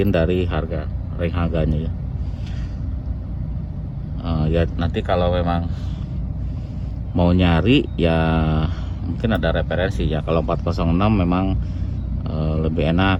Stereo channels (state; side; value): identical; both; correlation 1.00